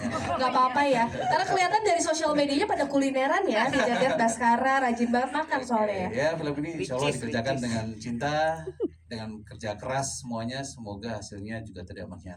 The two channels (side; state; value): both; identical; correlation 1.00